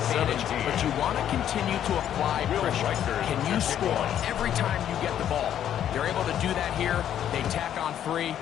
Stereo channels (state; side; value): quieter; right; 10.3 dB